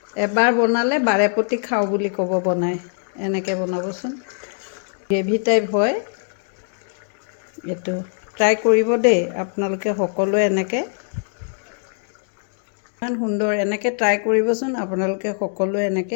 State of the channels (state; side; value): silent; right; 59 dB below the other